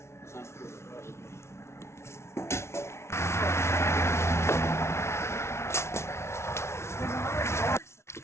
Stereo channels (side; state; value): right; late; 0.13 ms